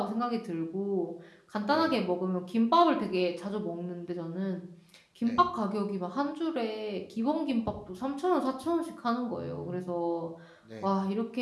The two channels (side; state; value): both; identical; correlation 1.00